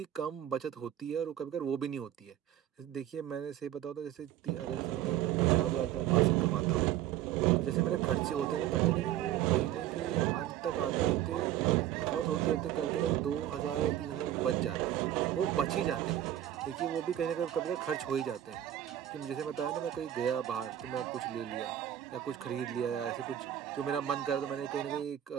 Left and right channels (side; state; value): left; quieter; 11.9 dB